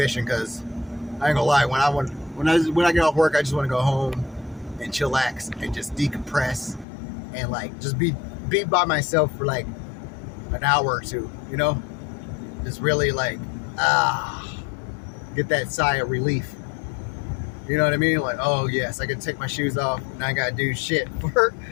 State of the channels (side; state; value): right; drops out; at 6.9 s